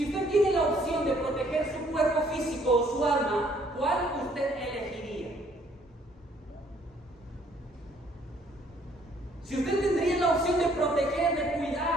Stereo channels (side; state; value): both; normal; correlation 0.63